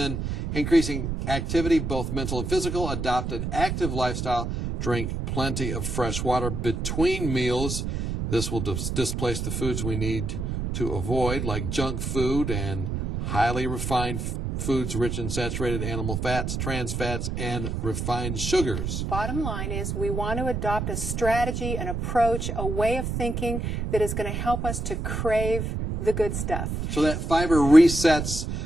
increasing activity, both mental and physical. Adopt an active lifestyle. Drink plenty of fresh water between meals. This will displace the foods we need to avoid, like junk food and highly refined foods rich in saturated animal fats, trans fats, and refined sugars. Bottom line is we want to adopt a strategy, an approach, a way of thinking that is going to help us to crave the good stuff. So that fiber resets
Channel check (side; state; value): right; noise; rumble, 3 dB below the sound